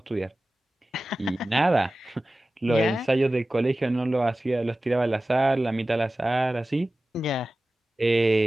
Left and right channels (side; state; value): both; normal; correlation 0.96